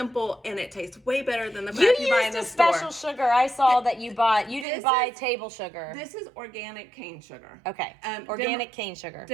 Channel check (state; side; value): drops out; left; at 4.7 s